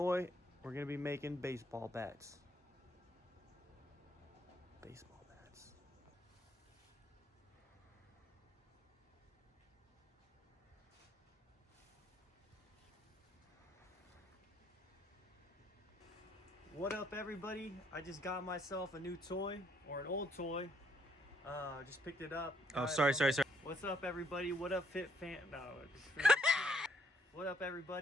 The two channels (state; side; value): normal; both; correlation 0.70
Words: We're gonna be making baseball bats. Baseball bats. What up, everybody? I just got myself a new toy, or an old toy. Just picked it up. Oh, sorry. What's up, everybody? What up, Fit Fan? No. What up,